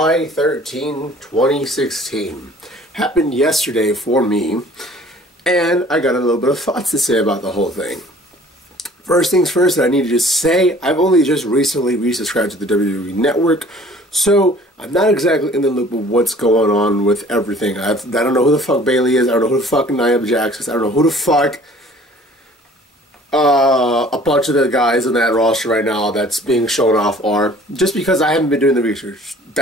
13, 2016. Happened yesterday for me, and I got a little bit of thoughts to say about the whole thing. First things first, I need to just say, I've only just recently resubscribed to the WWE Network, so I'm not exactly in the loop of what's going on with everything. I don't know who the fuck Bayley is, I don't know who the fuck Nia Jax is, I don't know who the fuck a bunch of the guys in that roster right now that's being shown off are, just because I haven't been doing the research.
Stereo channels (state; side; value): normal; both; correlation 0.51